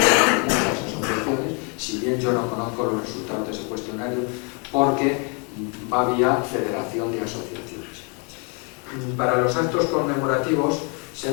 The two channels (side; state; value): right; quieter; 35.6 dB